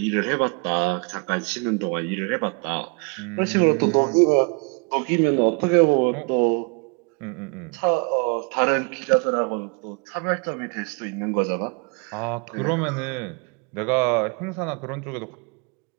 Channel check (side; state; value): left; quieter; 33.7 dB